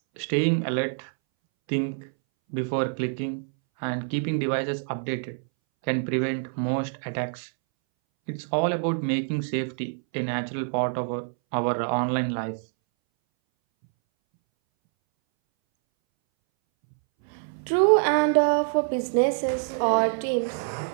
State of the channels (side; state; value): left; silent; 61 dB below the other